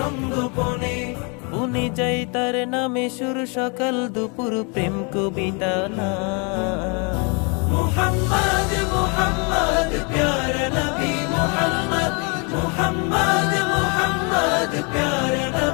বনে যাই তার নামে সুর সকাল দুপুর প্রেম কবিতা না। মুহাম্মদ মুহাম্মদ প্যারা নবী মুহাম্মদ, মুহাম্মদ মুহাম্মদ প্যারা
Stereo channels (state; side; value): quieter; right; 33.7 dB